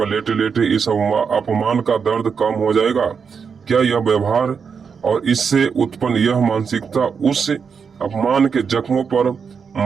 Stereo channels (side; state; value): left; quieter; 6.1 dB